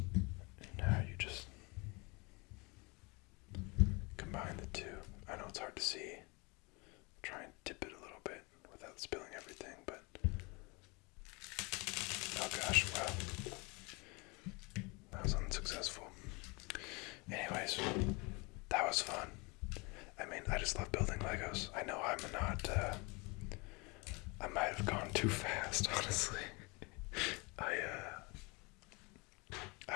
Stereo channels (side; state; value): right; quieter; 27.8 dB